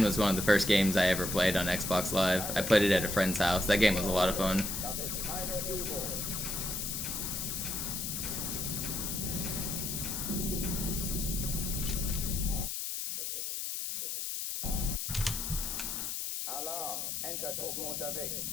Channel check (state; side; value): noise; left; hiss, 3 dB below the sound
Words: was one of the first games I ever played on Xbox Live. I played it at a friend's house. That game was a lot of fun.